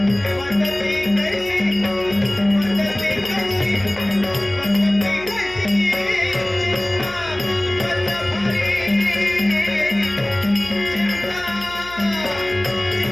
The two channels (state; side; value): noise; left; hum, 19 dB below the sound